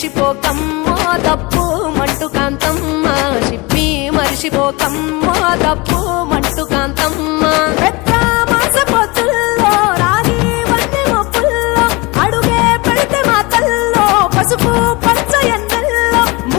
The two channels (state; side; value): quieter; right; 25.0 dB